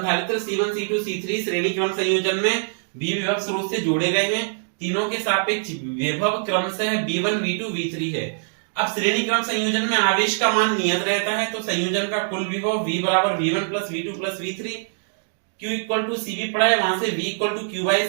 C1, C2, C3 श्रेणी क्रम संयोजन में V विभव स्रोत से जोड़े गए हैं। तीनों के सापेक्ष विभव क्रमशः V1, V2, V3 है। अब श्रेणी क्रम संयोजन में आवेश का मान नियत रहता है, तो संयोजन का कुल विभव V बराबर V1 plus V2 plus V3। Q equal to C भी पढ़ा है, वहां से V equal to Q by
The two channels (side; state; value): left; silent; digital silence